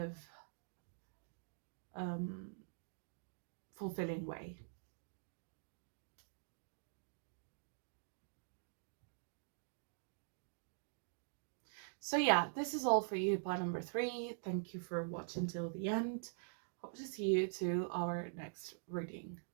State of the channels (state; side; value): silent; left; digital silence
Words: fulfilling way. So yeah, this is all for you by number 3. Thank you for watching till the end. Hope to see you to our next reading.